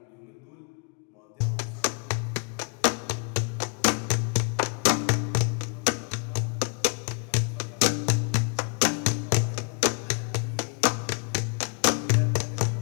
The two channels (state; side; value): quieter; right; 37.2 dB